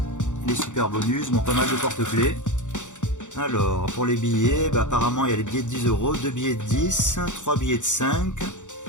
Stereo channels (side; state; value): right; late; 0.85 ms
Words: les super bonus, bon, pas mal de porte-clés. Alors pour les billets, bah, apparemment il y a les billets de 10 €, 2 billets de 10, 3 billets de 5,